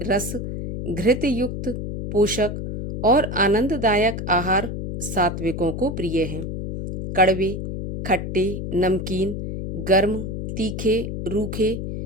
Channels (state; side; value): noise; left; hum, 5 dB below the sound